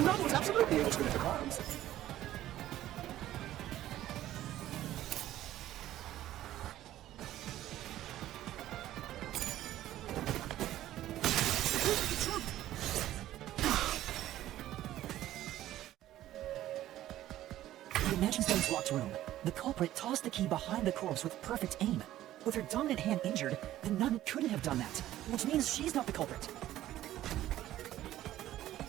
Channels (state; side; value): quieter; left; 13.7 dB